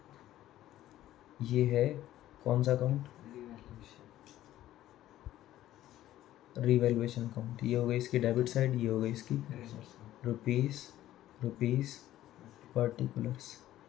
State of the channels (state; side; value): quieter; right; 13.7 dB